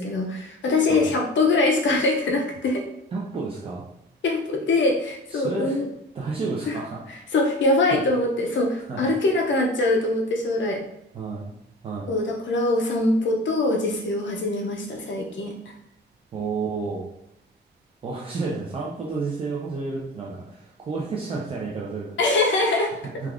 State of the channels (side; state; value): both; normal; correlation 0.35